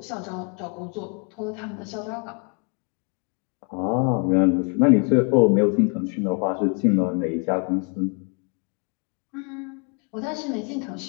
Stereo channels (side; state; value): right; quieter; 36.9 dB